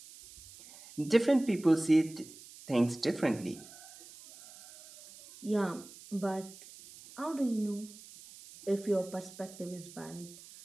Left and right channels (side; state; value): right; noise; hiss, 19 dB below the sound